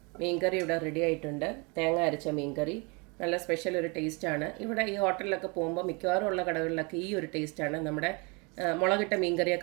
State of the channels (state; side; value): quieter; left; 30.4 dB